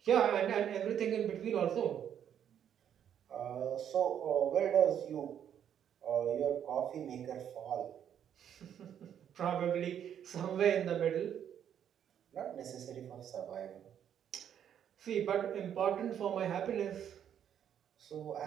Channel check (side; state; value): left; quieter; 9.3 dB